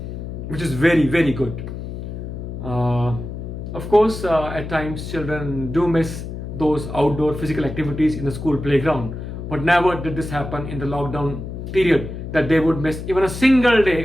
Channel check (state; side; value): noise; left; hum, 8 dB below the sound